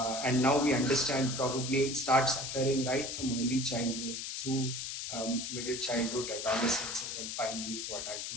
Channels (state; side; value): noise; left; hiss, 5 dB below the sound